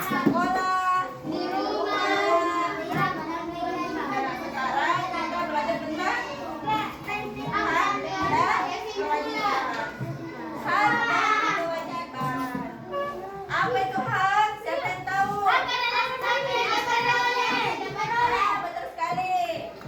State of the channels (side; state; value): both; identical; correlation 1.00